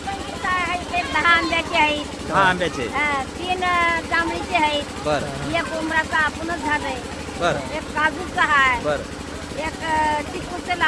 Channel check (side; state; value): both; identical; correlation 1.00